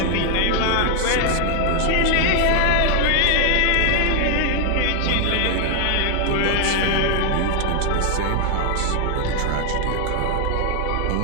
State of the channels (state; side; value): different; both; correlation 0.01